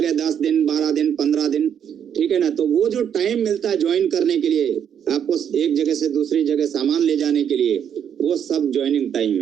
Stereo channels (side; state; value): left; quieter; 8.6 dB